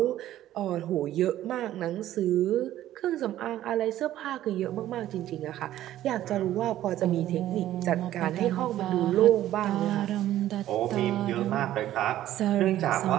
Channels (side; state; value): left; quieter; 13.3 dB